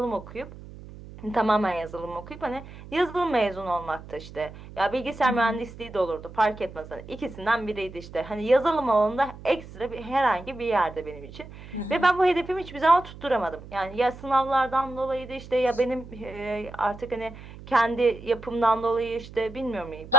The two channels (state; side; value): noise; right; hum, 16 dB below the sound